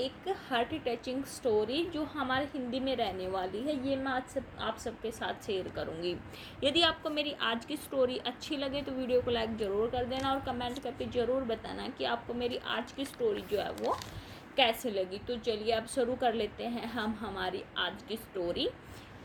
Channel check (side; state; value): both; identical; correlation 1.00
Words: हार्ट टचिंग स्टोरी जो हमारे हिंदी में रहने वाली है। ये मैं आज आप सबके साथ शेयर करूँगी। यदि आपको मेरी आज की स्टोरी अच्छी लगे तो वीडियो को लाइक ज़रूर कर देना और कमेंट करके ज़रूर बताना कि आपको मेरी आज की स्टोरी जो है वो कैसे लगी। तो चलिए अब शुरू कर लेते हैं हम हमारी आज की स्टोरी।